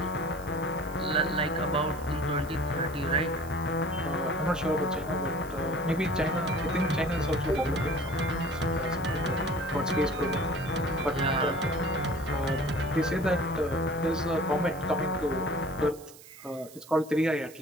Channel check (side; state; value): right; noise; hiss, 20 dB below the sound